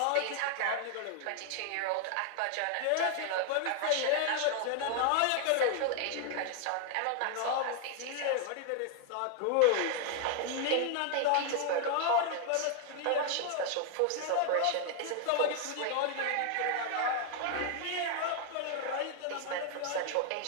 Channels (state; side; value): different; both; correlation 0.00